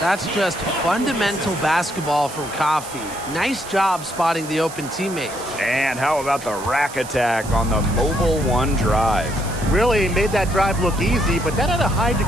just fundamental basketball from Coffee. Nice job spotting the open teammate. And how about the rack attack on the mobile 1 drive? Really made that drive look easy, but that had a high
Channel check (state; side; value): noise; right; hiss, 14 dB below the sound